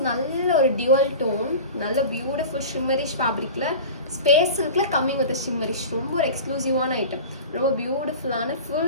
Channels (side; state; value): both; inverted; correlation -0.34